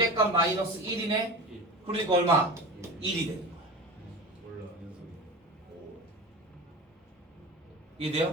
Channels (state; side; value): normal; both; correlation 0.31